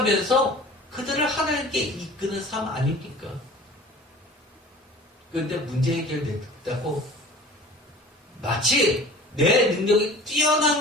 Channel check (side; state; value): both; normal; correlation 0.43